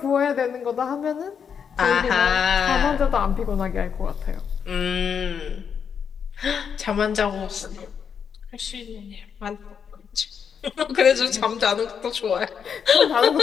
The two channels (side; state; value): right; quieter; 7.1 dB